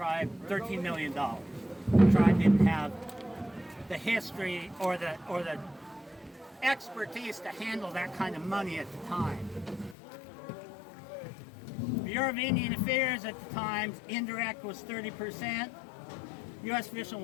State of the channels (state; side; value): drops out; right; at 10.0 s